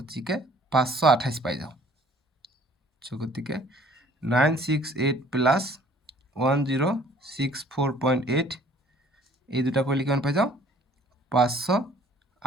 528 পাই যাও গতিকে 968 প্লাস 1064.8 এই দুটা কৰিলে কিমান পাই যাও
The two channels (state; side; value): normal; both; correlation 0.56